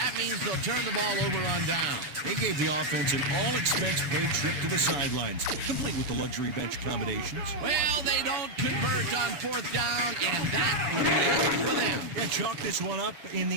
means they'll turn the ball over on down. They gave the offense an all-expense-paid trip to the sidelines, complete with the luxury bench accommodations. Well, they don't convert on fourth down, and that will be it for them. Yeah, chalk this one up in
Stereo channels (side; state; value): left; late; 7.0 ms